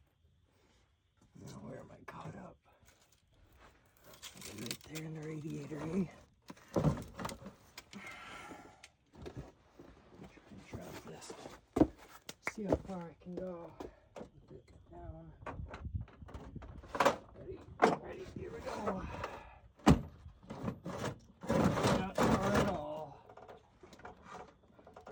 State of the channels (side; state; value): both; identical; correlation 1.00